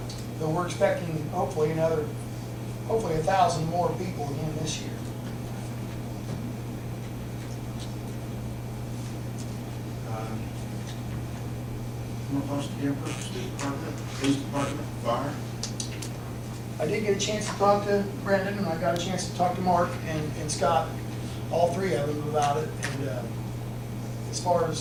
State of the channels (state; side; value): identical; both; correlation 1.00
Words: Though we're expecting hopefully 1,000 more people again this year. Most campers, state department, police department, fire. I did get a chance to talk to Brendan, and I got a chance to talk to Mark and Scott, all three of them about it. And as far